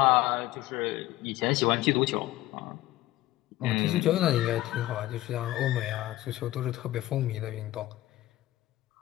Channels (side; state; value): right; quieter; 16.1 dB